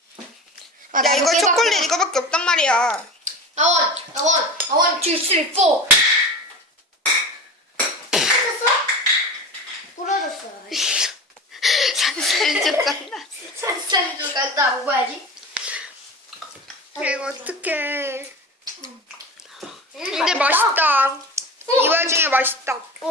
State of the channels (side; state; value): both; normal; correlation 0.31